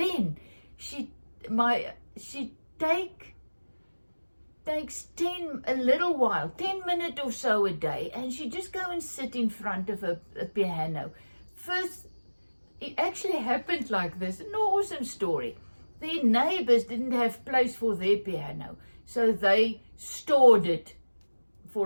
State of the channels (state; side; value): inverted; both; correlation -1.00